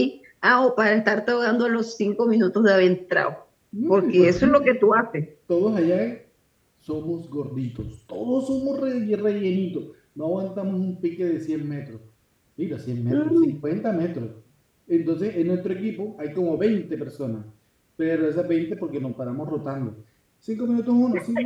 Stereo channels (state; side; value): identical; both; correlation 1.00